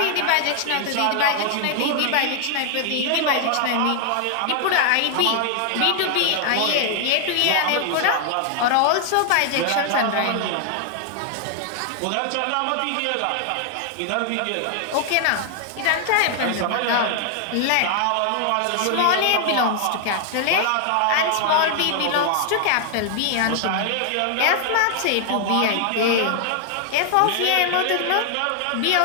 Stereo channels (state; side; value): different; both; correlation 0.00